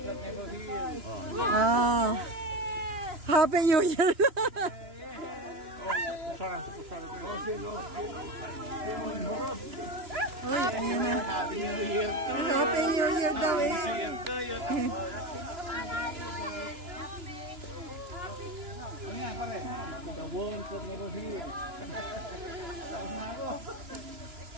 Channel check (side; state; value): left; late; 2.9 ms